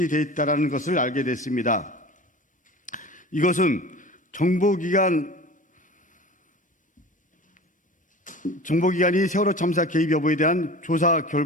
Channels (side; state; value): both; normal; correlation 0.37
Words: 있다는 것을 알게 됐습니다. 이것은 정보기관이 세월호 참사 개입 여부에 대한 조사